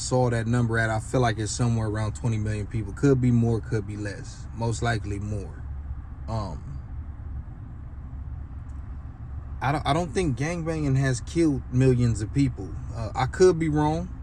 that number at. I feel like it's somewhere around 20 million people. Could be more, could be less. Most likely more. I don't think gangbanging has killed millions of people. I could be wrong.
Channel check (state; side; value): identical; both; correlation 1.00